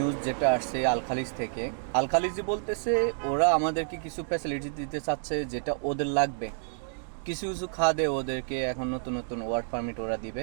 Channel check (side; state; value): left; silent; digital silence